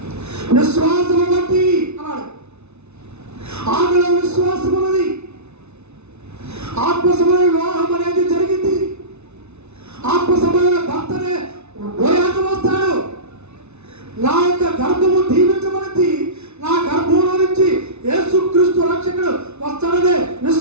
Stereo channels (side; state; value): left; late; 0.81 ms